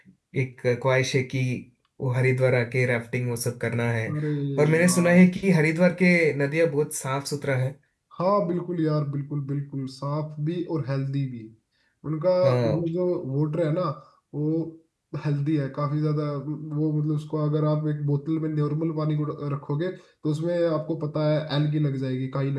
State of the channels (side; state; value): both; identical; correlation 1.00